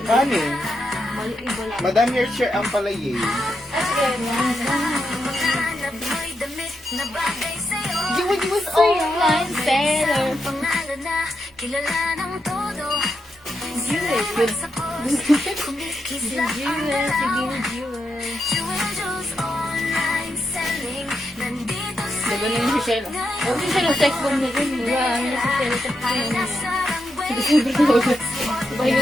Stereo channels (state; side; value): normal; both; correlation 0.84